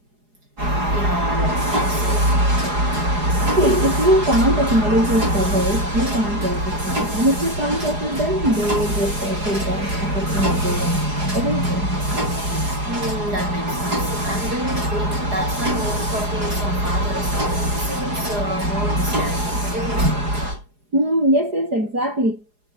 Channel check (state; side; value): late; left; 4.8 ms